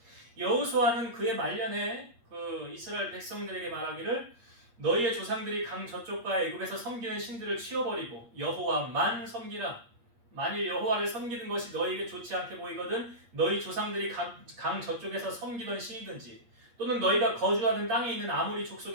여호수아는 그의 말년에 그 이스라엘 백성들에게 말하기를 너희의 조상들이 강 저쪽과 애굽에서 섬기는 신들을 치워버리고 여호와만 섬기라. 만일 여호와를 섬기는 것이 너희에게 좋지 않게 보이거든 너희 조상들이 강 저쪽에서 섬기던 신이든지 또는 너희가 거주하는 땅에 있는 아무리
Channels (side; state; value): left; late; 8.5 ms